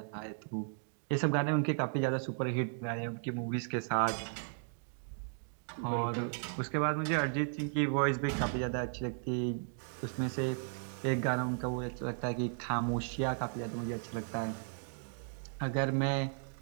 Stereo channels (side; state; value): left; silent; digital silence